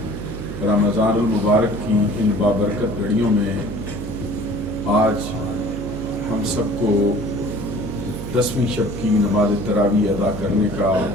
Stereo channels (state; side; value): noise; right; hum, 8 dB below the sound